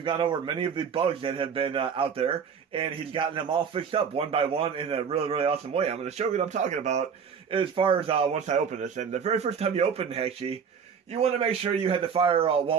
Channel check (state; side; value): quieter; left; 6.7 dB